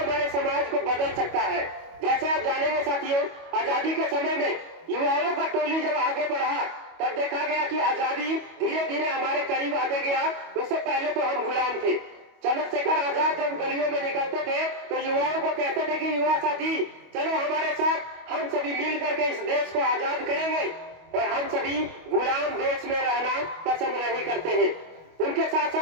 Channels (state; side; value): late; left; 25 ms